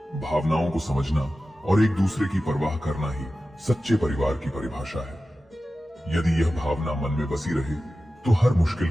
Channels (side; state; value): both; normal; correlation 0.94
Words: भावनाओं को समझना और एक दूसरे की परवाह करना ही सच्चे परिवार की परिभाषा है। यदि यह भावना मन में बसी रहे, तो हर मुश्किल